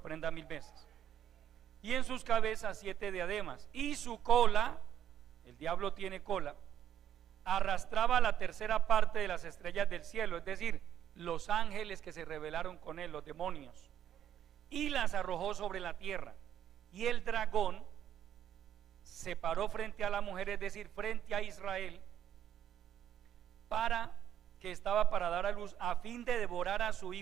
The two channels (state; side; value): quieter; left; 10.3 dB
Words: 1000 veces. Y en sus cabezas 7 diademas, y su cola, el diablo tiene cola, arrastraba la tercera parte de las estrellas del cielo, es decir, los ángeles que se rebelaron con él, los demonios, y las arrojó sobre la tierra. Y el dragón se paró frente a la mujer, es decir, frente a Israel, que estaba para dar a luz, a fin de devorar a su